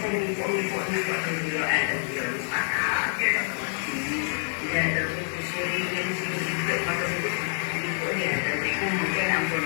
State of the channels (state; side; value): silent; right; digital silence